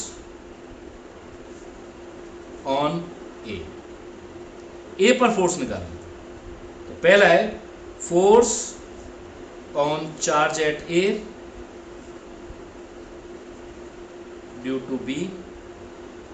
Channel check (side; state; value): both; identical; correlation 1.00